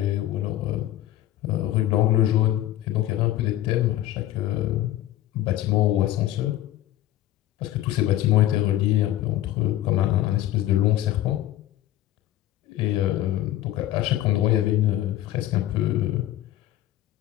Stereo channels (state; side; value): quieter; right; 13.7 dB